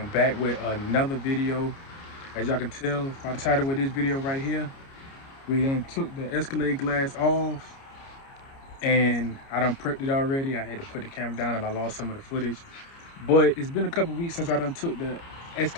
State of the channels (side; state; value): right; late; 29 ms